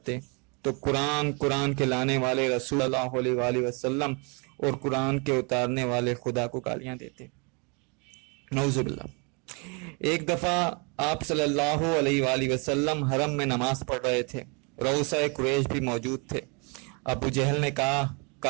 تو قرآن کے لانے والے رسول اللہ علیہ وآلہ وسلم اور قرآن کے اتارنے والے خدا کو گالیاں دیتے، نعوذ باللہ۔ ایک دفعہ آپ صلی اللہ علیہ وآلہ وسلم حرم میں نماز پڑھ رہے تھے، رؤسائے قریش بھی موجود تھے۔ ابو جہل نے کہا،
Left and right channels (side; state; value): left; quieter; 32.9 dB